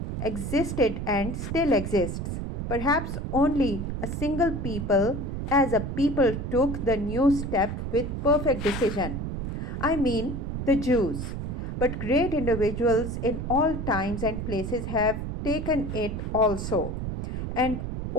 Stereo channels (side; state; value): right; noise; rumble, 4 dB below the sound